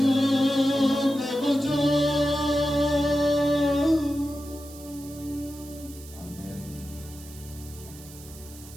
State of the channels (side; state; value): right; noise; hiss, 18 dB below the sound